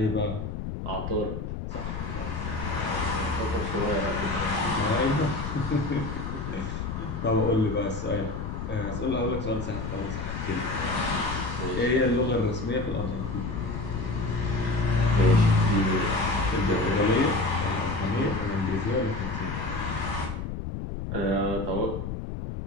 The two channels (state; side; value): noise; left; rumble, 5 dB below the sound